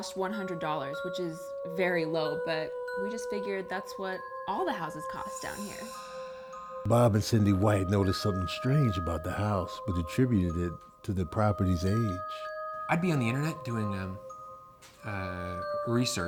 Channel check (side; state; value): both; identical; correlation 1.00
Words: $100, which is very low, but we just figured that's what all the houses cost down here. Bob and Cindy White noticed something strange about the house, but attributed it to the property's age. I'd be on the internet doing